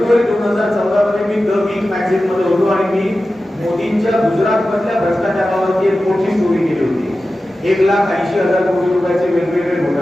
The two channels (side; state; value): both; normal; correlation 0.94